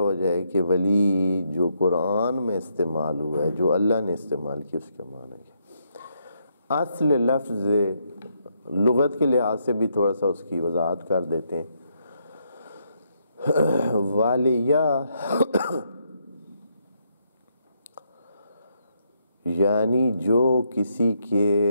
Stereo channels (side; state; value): both; inverted; correlation -0.77